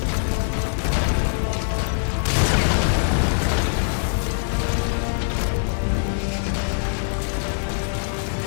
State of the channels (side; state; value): right; silent; 56 dB below the other